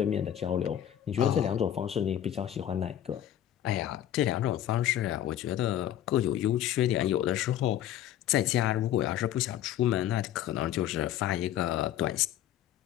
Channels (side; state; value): right; quieter; 11.5 dB